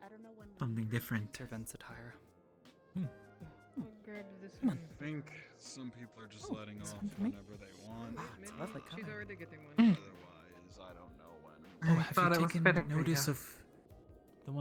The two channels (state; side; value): identical; both; correlation 1.00